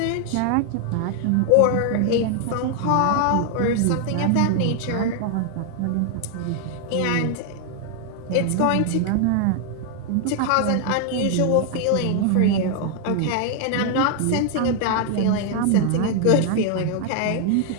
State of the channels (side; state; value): both; different; correlation 0.00